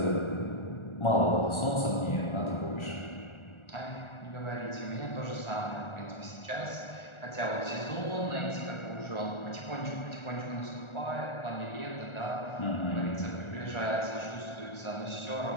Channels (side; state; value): right; late; 1.4 ms